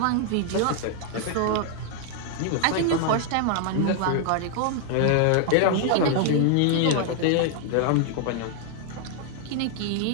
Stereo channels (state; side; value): different; both; correlation 0.00